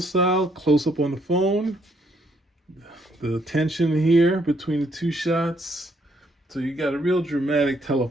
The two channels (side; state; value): both; normal; correlation 0.70